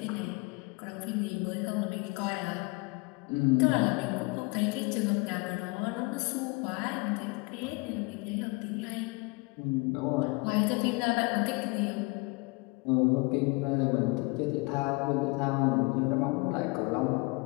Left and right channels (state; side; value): quieter; right; 27.1 dB